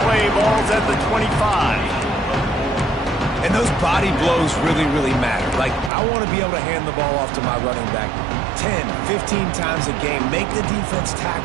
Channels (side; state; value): left; drops out; at 5.9 s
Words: play. Ball's at the 25. And those body blows really, really matter. Like, I want to be able to hand the ball off to my running back 10, 15 times a game. Make the defense